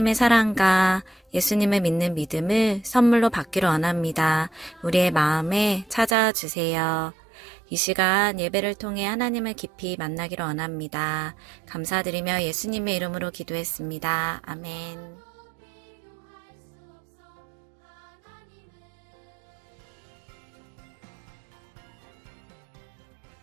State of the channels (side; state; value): left; drops out; at 6.2 s